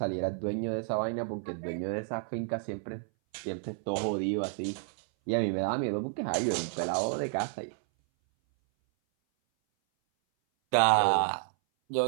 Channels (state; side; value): silent; left; 57 dB below the other